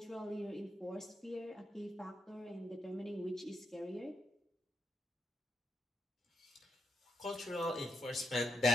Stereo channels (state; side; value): normal; both; correlation 0.81